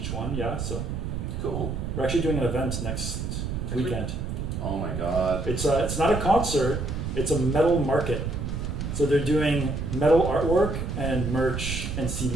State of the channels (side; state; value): right; noise; rumble, 3 dB below the sound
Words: one. Yeah, so Cool. we're actually doing an event next weekend. Oh my god. It's not a concert. It's a metal market. So they're doing metal artwork and merch and